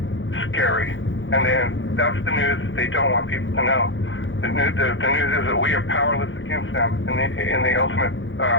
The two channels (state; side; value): late; right; 0.56 ms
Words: scary. And then that's the news that they don't want people to know. The news is that we are powerless against them in the ultimate